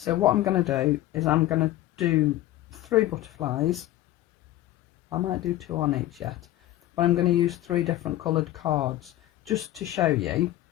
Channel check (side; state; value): right; quieter; 14.9 dB